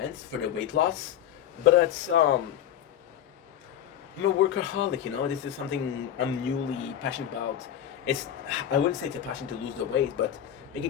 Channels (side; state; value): right; quieter; 10.5 dB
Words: for the weight loss, but it's I'm a workaholic, you know. This is something I'm newly passionate about. I wouldn't say it's a passion to lose the weight, but